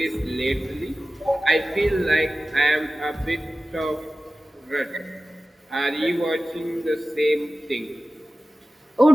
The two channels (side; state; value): both; normal; correlation 0.96